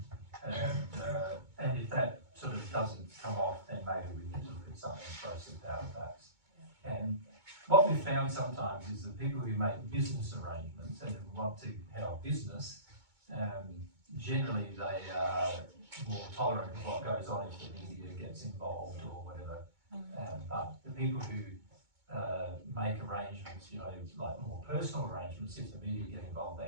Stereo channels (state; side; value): late; left; 2.2 ms